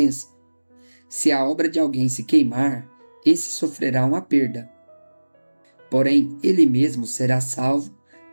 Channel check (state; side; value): inverted; both; correlation -1.00